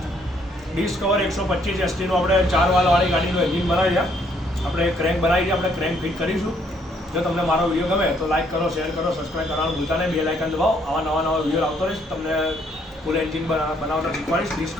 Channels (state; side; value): normal; both; correlation 0.68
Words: ડિસ્કવર 125 STનું આપણે 4 વાળવાળી ગાડીનું એન્જિન બનાવી છે. આપણે ક્રેન્ક બનાવી છે, આપણે ક્રેન્ક ફિટ કરીશું. જો તમને મારો વિડીયો ગમે તો લાઈક કરો, શેર કરો, સબસ્ક્રાઈબ કરવાનું ભૂલતા નહીં. બેલ આઇકન દબાવો. આવા નવા વિડીયો આવતો રહીશ. તમને ફૂલ એન્જિન બનાવતા શીખવાડીશ